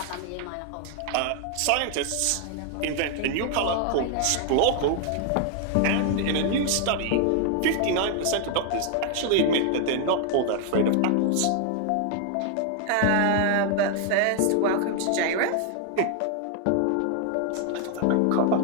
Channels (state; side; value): different; both; correlation 0.00